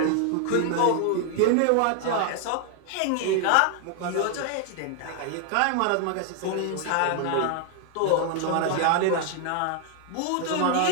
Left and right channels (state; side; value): different; both; correlation 0.00